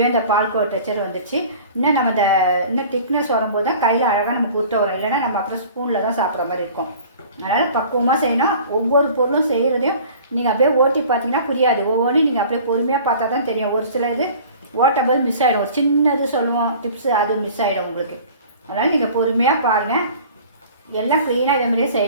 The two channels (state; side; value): inverted; both; correlation -0.45